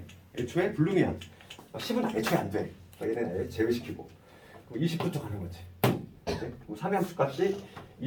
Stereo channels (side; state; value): both; identical; correlation 1.00